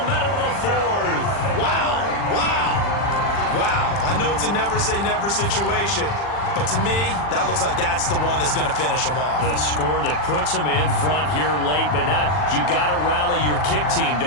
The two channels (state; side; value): late; right; 40 ms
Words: minute of the 4th. Wow, wow, wow. I know it's a never-say-never situation, but to me, that looks like that's the one that's going to finish them off. The score that puts them in front here late, but now you got to rally your kick team,